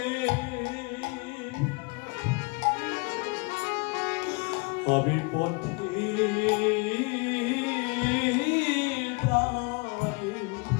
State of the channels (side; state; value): right; quieter; 30.2 dB